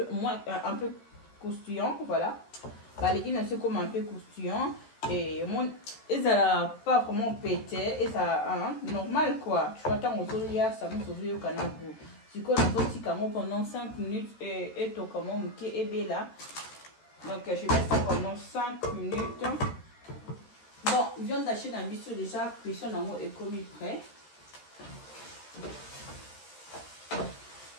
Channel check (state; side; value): late; right; 13 ms